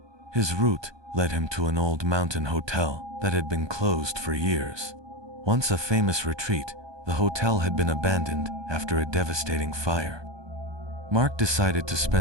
His route led him to an old mountain hotel that had been closed for years. Once a famous retreat, the hotel had been abandoned after a devastating fire. Mark decided to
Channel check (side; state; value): left; late; 1.2 ms